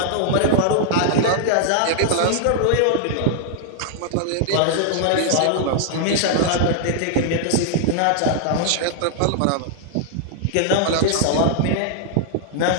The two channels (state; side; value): different; both; correlation -0.01